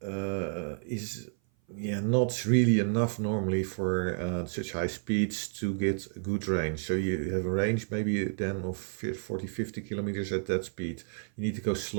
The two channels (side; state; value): left; silent; 55 dB below the other